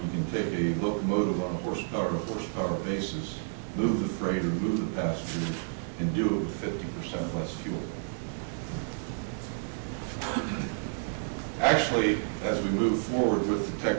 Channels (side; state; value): left; silent; digital silence